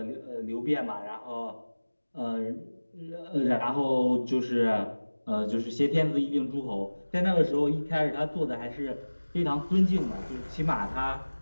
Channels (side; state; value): both; inverted; correlation -1.00